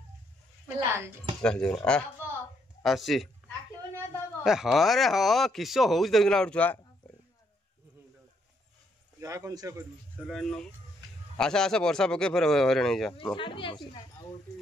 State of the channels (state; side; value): normal; both; correlation 0.73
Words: चल आसी हाँ रे हाँ किस हो देखना गोटे छुआ आशा आशा वर्षा पके फिर हरे नहीं जा